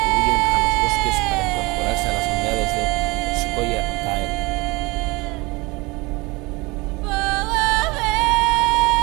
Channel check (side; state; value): left; quieter; 24.5 dB